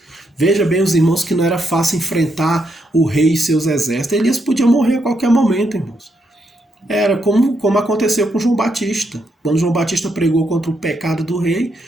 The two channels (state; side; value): normal; both; correlation 0.79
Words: Veja bem, os irmãos, que não era fácil enfrentar o rei e seus exércitos. Elias podia morrer a qualquer momento, irmãos. Era como aconteceu com João Batista. Quando João Batista pregou contra o pecado do rei,